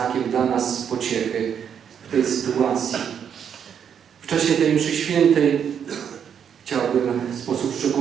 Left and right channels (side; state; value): left; quieter; 8.0 dB